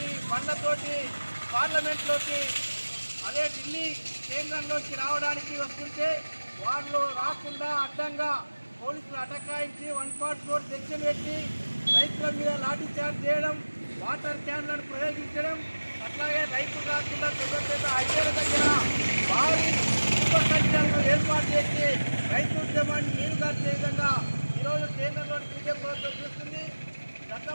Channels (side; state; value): both; inverted; correlation -1.00